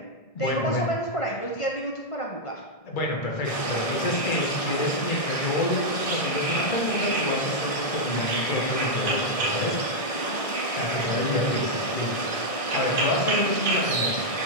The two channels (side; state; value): right; late; 1.6 ms